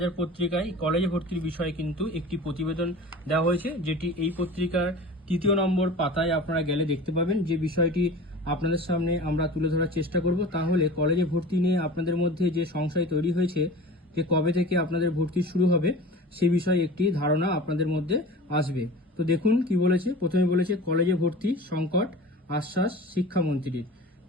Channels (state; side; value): normal; both; correlation 0.38